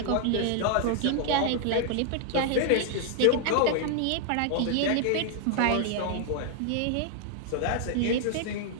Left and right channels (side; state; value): both; different; correlation 0.00